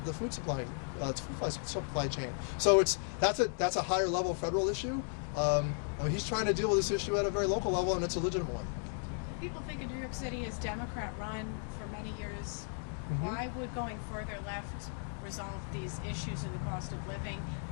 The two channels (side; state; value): right; silent; 54 dB below the other